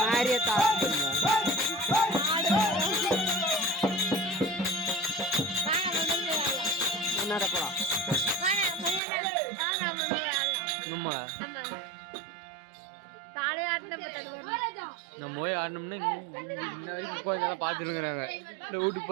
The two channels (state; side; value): drops out; left; at 9.0 s